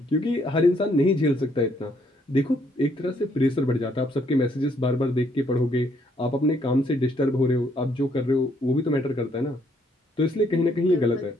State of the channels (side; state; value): both; normal; correlation 0.69